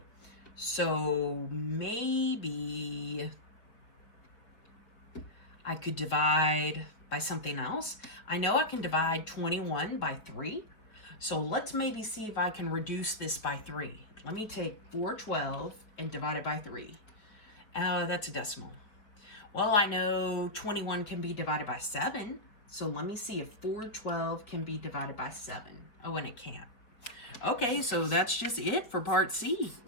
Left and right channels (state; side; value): late; right; 4.9 ms